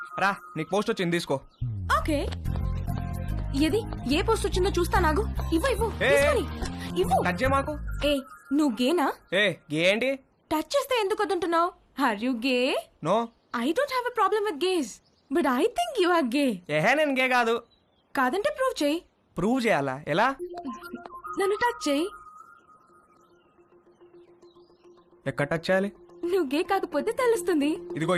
రా నీకు పోస్ట్ వచ్చింది తీసుకో. ఓకే, ఏది ఏ పోస్ట్ వచ్చిందో చూస్తా. నాగు ఇవ్వు ఇవ్వు ఏ, తీసుకొని ఇవ్వు. టచ్ చేయ మాకు. ఏ నువ్వు గేనా? ఏ గే ఏంటి? టచ్ చేస్తే ఎందుకు వద్దంటున్నావు? Are you gay? No. I don't have a problem with gays, but I think you are gay. ఏహే నేను గే కాదు. కాదంటే ప్రూవ్ చేయి. ప్రూవ్ చేయాలా? ఎలా? నన్ను టచ్ చేయి. ఎక్కడ టచ్ చేయాలి? నువ్వు గే కాకపోతే తెలుస్తుంది. ఇదిగో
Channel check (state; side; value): identical; both; correlation 1.00